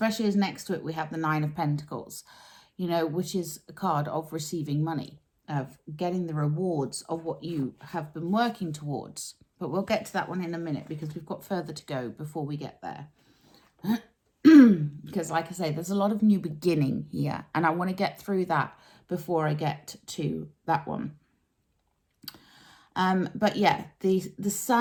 as next to it we have the Nine of Pentacles, you know, which is a card of receiving money, of getting the rewards of what you have been working towards. But we'll get to that one in a minute because we've got further to go before we get there. Because like I say, there's a lot of new beginning here, and I want to get through that before I get to that one. But yeah, the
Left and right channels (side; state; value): both; identical; correlation 1.00